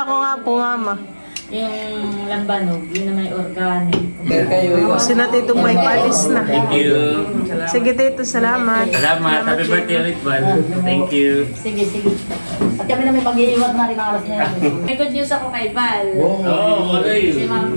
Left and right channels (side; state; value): both; inverted; correlation -1.00